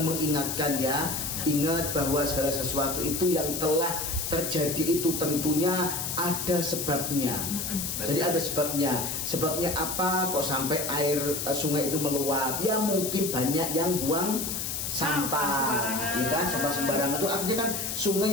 mengingatkan ya. Ingat bahwa segala sesuatu itu yang telah terjadi itu tentunya ada sebabnya. Jadi ada sebabnya. Sebabnya apa kok sampai air sungai itu meluap? Ya mungkin banyak yang buang sembarangan. Ya kan, sampah sembarangan itu artinya kan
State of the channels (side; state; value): left; noise; hiss, 3 dB below the sound